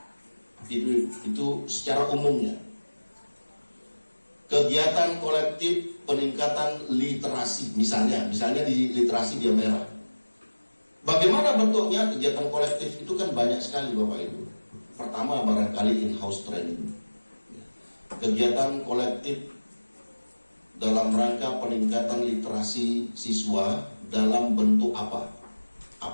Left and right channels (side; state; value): both; inverted; correlation -1.00